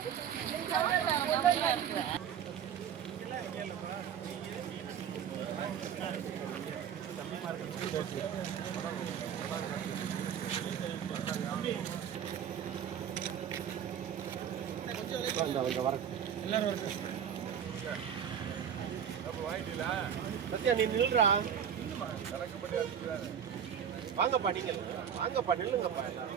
நீ நில்றா. வாங்கப்பா, நீங்க வாங்கப்பா, நில்லுங்கப்பா.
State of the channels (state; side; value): quieter; left; 8.6 dB